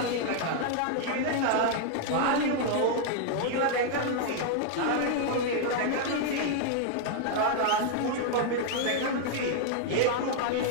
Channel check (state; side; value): different; both; correlation 0.00